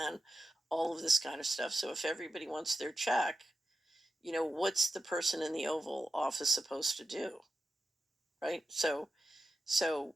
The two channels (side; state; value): both; normal; correlation 0.90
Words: all of this kind of stuff. So if everybody wants their check, what's the person in the Oval Office supposed to do, right? So